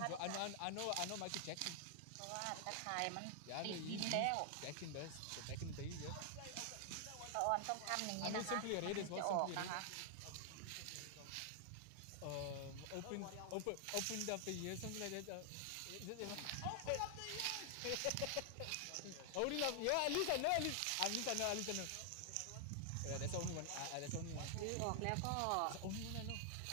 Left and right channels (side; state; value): both; different; correlation 0.00